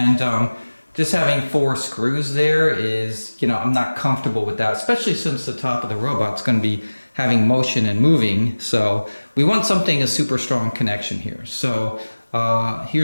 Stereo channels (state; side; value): inverted; both; correlation -1.00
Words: just having 4 screws there is, you know, I'm not comfortable with that, especially since the top of the robot's going to be having motion and moving. So we want something, a super strong connection here. So